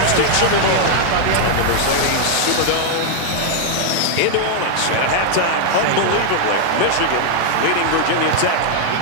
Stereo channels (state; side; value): different; both; correlation 0.00